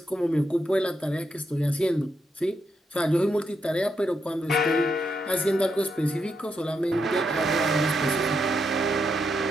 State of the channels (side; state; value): both; normal; correlation 0.82